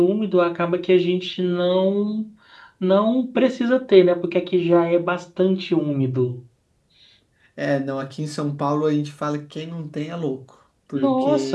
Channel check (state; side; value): identical; both; correlation 1.00